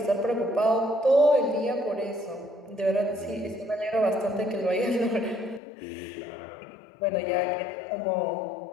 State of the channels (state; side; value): drops out; right; at 5.6 s